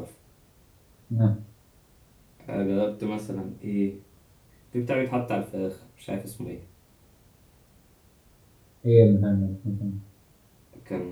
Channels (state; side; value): identical; both; correlation 1.00